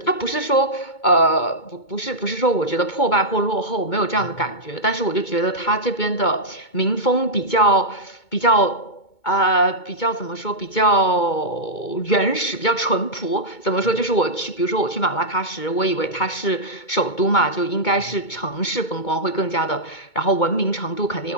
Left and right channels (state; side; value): late; right; 2.2 ms